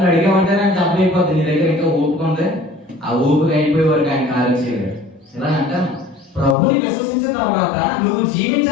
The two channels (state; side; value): drops out; right; at 6.6 s